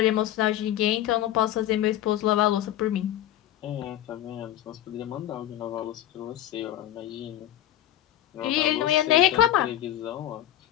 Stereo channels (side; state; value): right; quieter; 12.5 dB